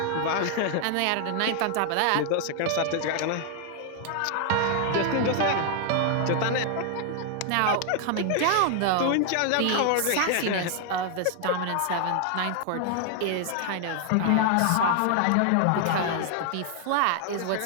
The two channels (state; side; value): different; both; correlation 0.00